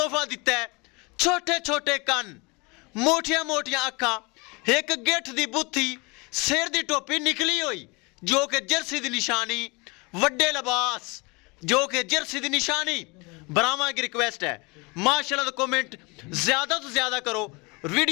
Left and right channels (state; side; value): quieter; right; 27.6 dB